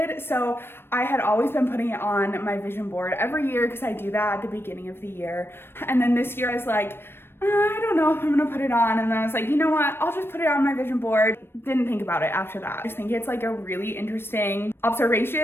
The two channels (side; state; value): right; late; 0.11 ms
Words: So I had always been putting it on my vision board every year, because I do that at the beginning of the year. And then this year I was like, I don't know if I'm gonna put it on. And then I was like, you know what? I'll just put it on my vision board. Didn't think about it after that. I just think it's a really interesting